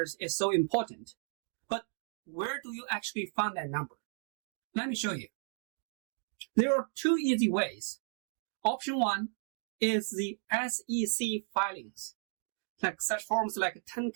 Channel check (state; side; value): silent; left; digital silence